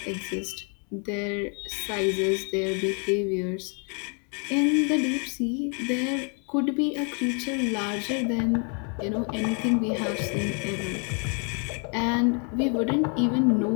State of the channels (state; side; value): quieter; right; 38.6 dB